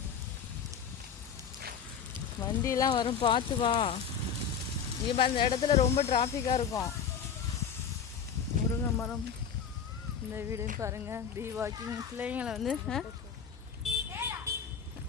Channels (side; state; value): right; quieter; 7.0 dB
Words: வண்டியெல்லாம் வரும், பார்த்து வா. இப்போ அந்த இடத்துல ரொம்ப டிராஃபிக்காக இருக்கும். முருங்கை மரம் இந்த வீடுன்னு பாருங்கள். பி வாக்கிங் பிள்ளைங்களை வந்து